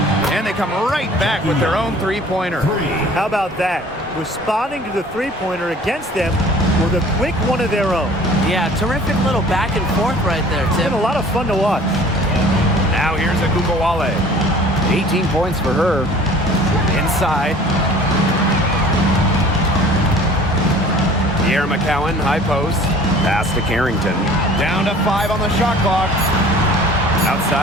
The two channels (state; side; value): normal; both; correlation 0.48